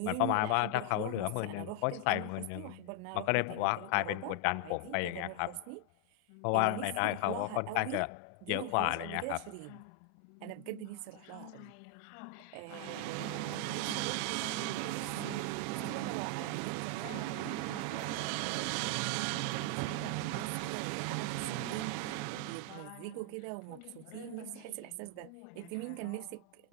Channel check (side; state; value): both; different; correlation 0.00